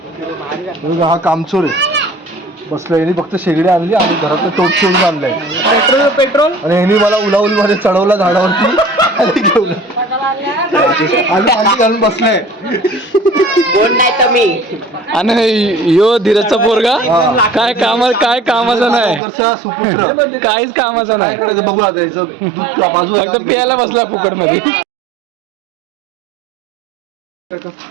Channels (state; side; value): drops out; left; at 19.2 s